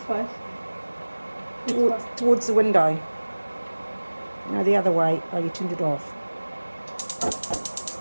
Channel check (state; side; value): inverted; both; correlation -1.00